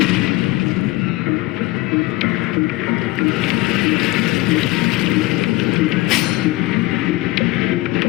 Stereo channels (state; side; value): quieter; right; 19.8 dB